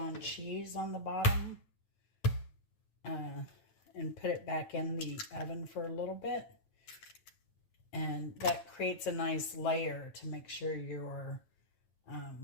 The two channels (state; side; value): late; right; 9.1 ms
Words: cheese on the bottom. And put it back in the oven for a little bit. And that creates a nice layer to make sure your